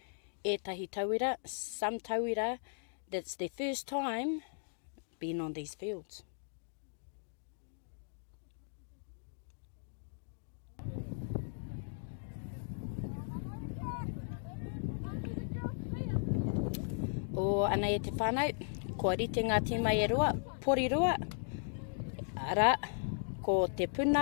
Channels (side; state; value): right; silent; digital silence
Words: ētahi tauira, some tauira, that's their first time being on these fields. O ana e te whānau, kua rite ngā tīma e rua, Porirua, ara, ko te